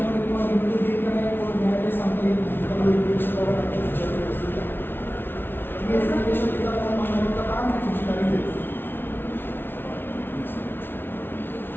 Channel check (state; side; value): late; right; 0.11 ms